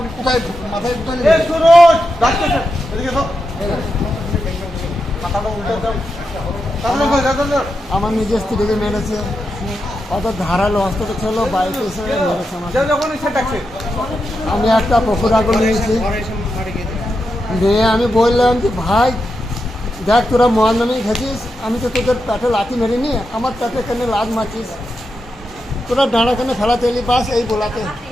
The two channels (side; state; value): both; normal; correlation 0.87